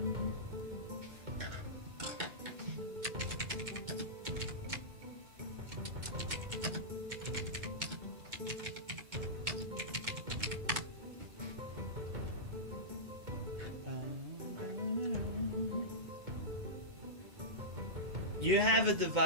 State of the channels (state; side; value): late; left; 2.2 ms